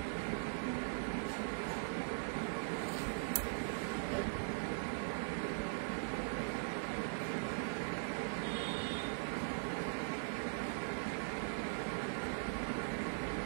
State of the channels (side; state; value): left; silent; digital silence